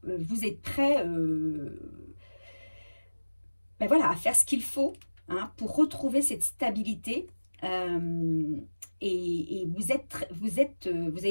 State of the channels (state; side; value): inverted; both; correlation -1.00